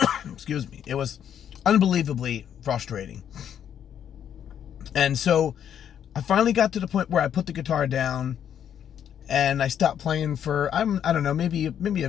excuse me, it was unbelievably frustrating. And so I finally got to the point where I put the guitar down and I stopped playing for, I don't know, maybe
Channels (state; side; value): quieter; right; 9.2 dB